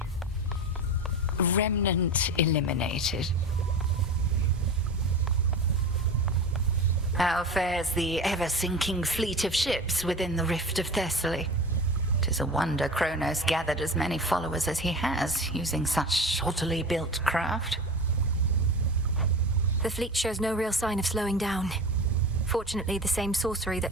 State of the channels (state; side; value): normal; both; correlation 0.30